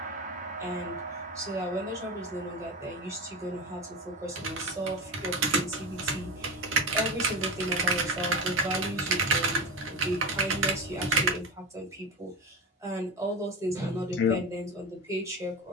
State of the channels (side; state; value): both; normal; correlation 0.23